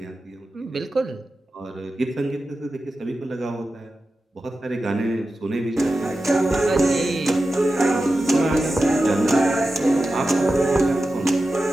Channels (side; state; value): both; normal; correlation 0.93